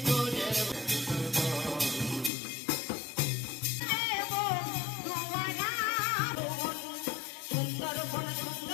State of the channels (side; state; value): right; drops out; at 2.3 s